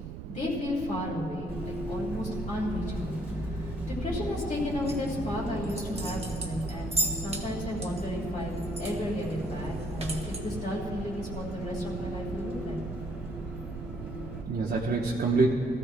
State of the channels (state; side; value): noise; right; rumble, 8 dB below the sound